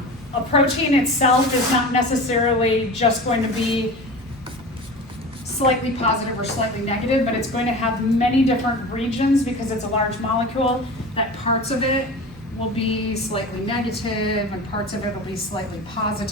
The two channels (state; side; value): normal; both; correlation 0.33